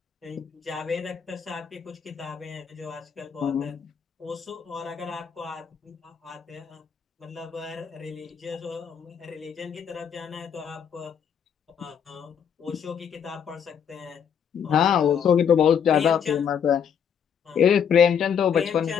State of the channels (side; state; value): right; quieter; 7.7 dB